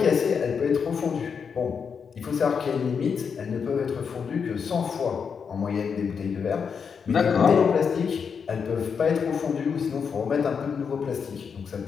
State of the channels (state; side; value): quieter; right; 6.3 dB